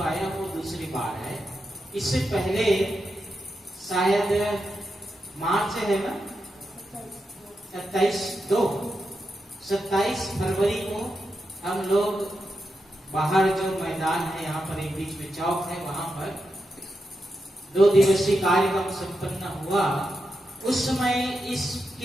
आया वो दूसरी बार है। इससे पहले शायद मार्च है ना, 27 फरवरी को हम लोग बाहर जो मैदान है, यहाँ पर एक बीच में चौक है, वहां पर 2 दिवसीय कार्यक्रम संपन्न हुआ। उस समय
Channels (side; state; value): both; normal; correlation 0.87